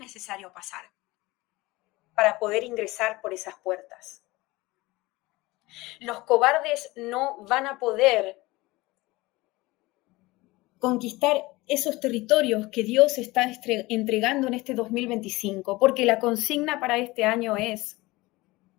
pasar para poder ingresar por esas puertas. Los cobardes no van a poder conquistar esos territorios que Dios está entregando en este 2025, porque la consigna para este año es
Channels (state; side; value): quieter; right; 21.0 dB